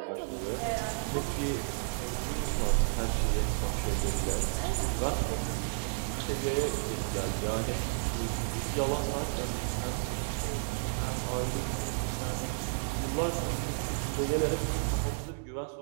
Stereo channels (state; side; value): silent; left; digital silence